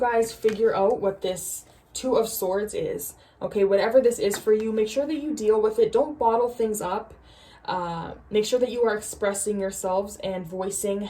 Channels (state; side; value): identical; both; correlation 1.00